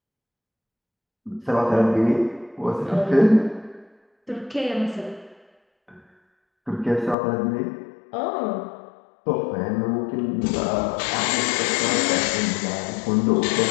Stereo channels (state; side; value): drops out; right; at 7.2 s